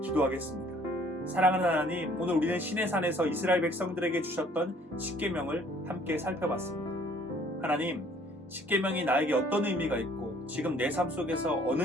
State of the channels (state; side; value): normal; both; correlation 0.58